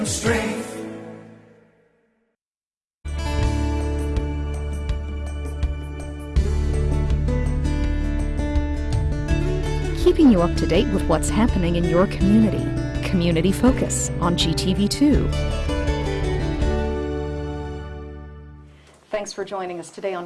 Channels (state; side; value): identical; both; correlation 1.00